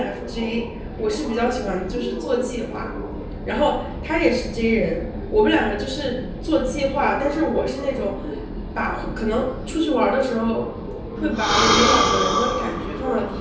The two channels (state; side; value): identical; both; correlation 1.00